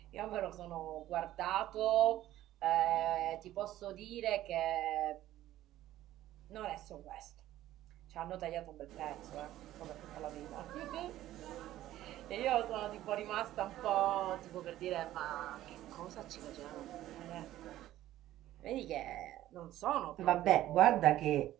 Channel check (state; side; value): quieter; left; 14.0 dB